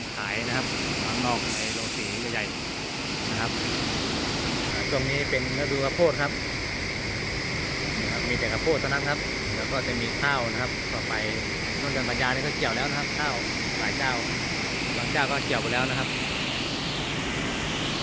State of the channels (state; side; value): identical; both; correlation 1.00